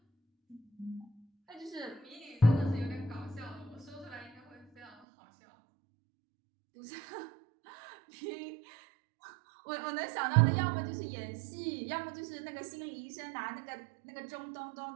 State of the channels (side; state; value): left; drops out; at 5.0 s